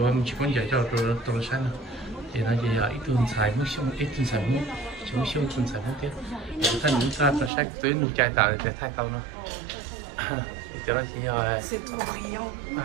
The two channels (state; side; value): drops out; left; at 7.5 s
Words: chỉ muốn dạy cho tôi sai nữa thì nó chỉ là ít tu sai muốn xong ít tu sai muốn chỉ muốn xong tu sai muốn tiếp thay những sai tao sai tới nụ chạy tạo để thay tao nó thì cho nó chỉ là